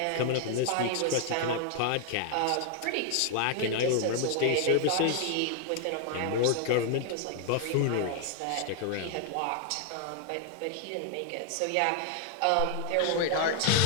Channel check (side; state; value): both; different; correlation 0.00